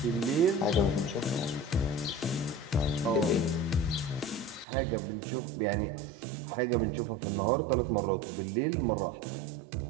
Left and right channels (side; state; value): left; drops out; at 4.7 s